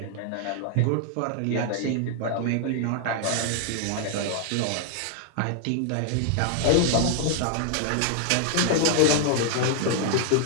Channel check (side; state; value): both; different; correlation 0.00